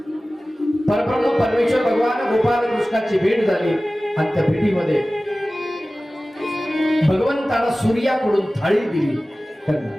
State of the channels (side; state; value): both; normal; correlation 0.97